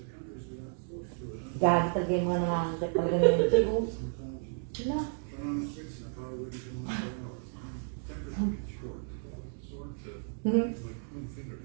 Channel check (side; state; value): left; silent; 56 dB below the other